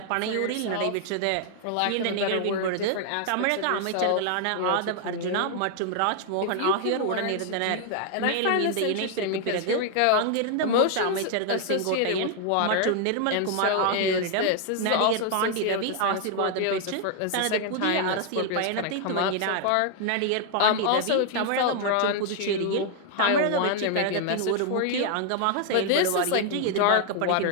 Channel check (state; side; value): different; both; correlation 0.00